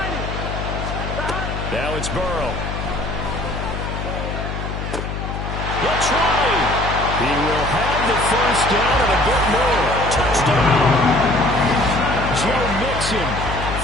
Now it's Burrow. He'll try. He will have the 1st down and a bit more. Touchdown. Joe Mixon,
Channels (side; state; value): left; noise; hum, 5 dB below the sound